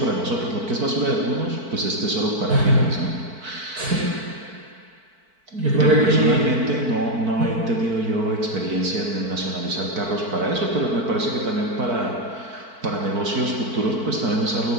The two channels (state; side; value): late; left; 4.5 ms